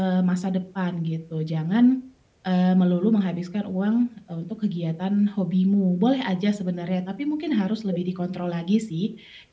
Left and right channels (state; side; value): identical; both; correlation 1.00